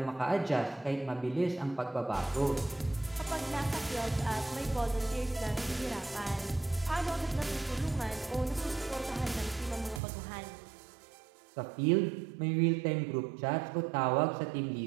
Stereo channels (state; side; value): drops out; left; at 10.0 s